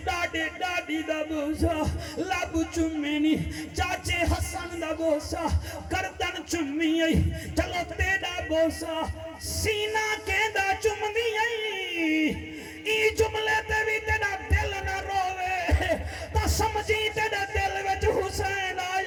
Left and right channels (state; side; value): identical; both; correlation 1.00